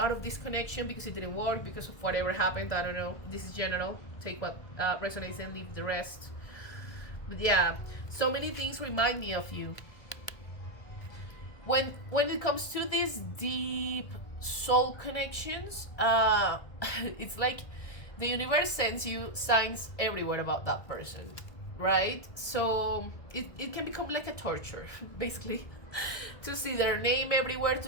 of this connection because it didn't work, because of whatever happened. I don't know. This is general. Take what resonates and leave the rest. But yeah, so many things remind me of you. When it comes to these deep soul connections, it's like the universe sends you signs everywhere about that person, right? So it can become like a torture, basically, to see their name everywhere,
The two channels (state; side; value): late; right; 1.6 ms